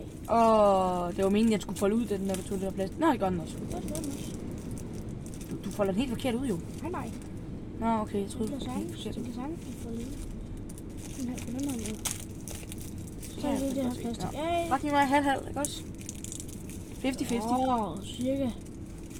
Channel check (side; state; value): both; identical; correlation 1.00